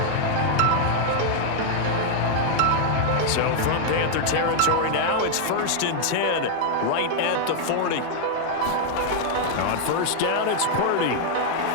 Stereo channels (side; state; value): both; different; correlation 0.00